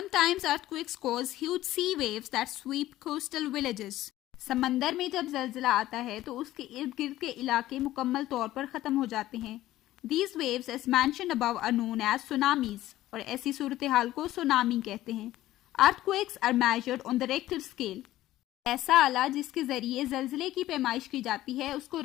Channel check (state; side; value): quieter; right; 15.0 dB